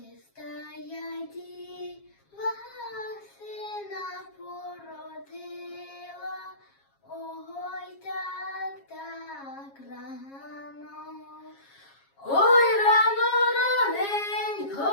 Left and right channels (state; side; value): late; right; 7.3 ms